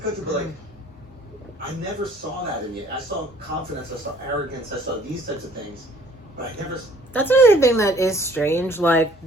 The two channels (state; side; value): normal; both; correlation 0.56